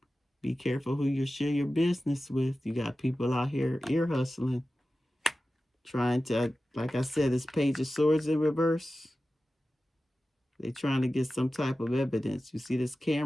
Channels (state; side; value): normal; both; correlation 0.94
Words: Be careful who you share your business with. You got people out here ear hustling. Trying to, like I said, this Page of Swords in reverse. They're trying to get some type of evidence. You see this